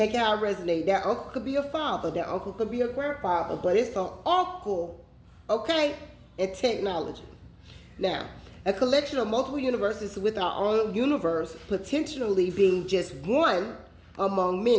it how it resonates. That uncle could be a father, that uncle could be a grandfather, but it's an uncle, okay, and technology. Now, a collection of multiple universes with our own universe potentially being just one among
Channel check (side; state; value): both; identical; correlation 1.00